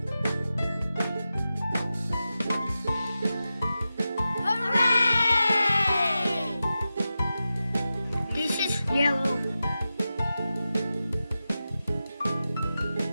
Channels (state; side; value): inverted; both; correlation -0.92